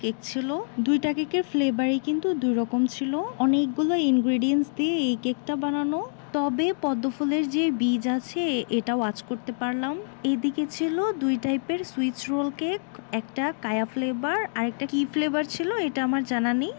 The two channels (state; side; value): silent; right; digital silence